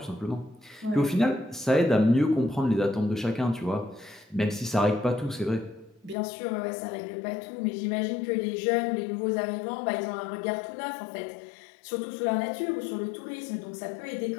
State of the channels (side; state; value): right; drops out; at 6.2 s